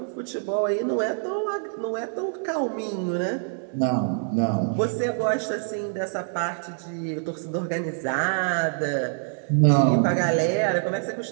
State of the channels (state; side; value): silent; left; digital silence